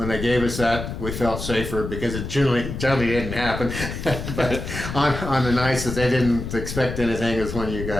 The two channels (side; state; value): left; noise; rumble, 6 dB below the sound